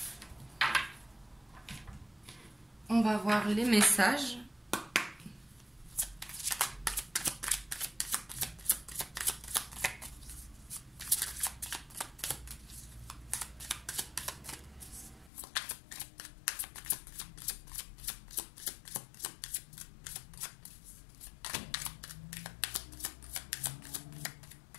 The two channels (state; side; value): drops out; right; at 15.3 s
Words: On va voir les messages.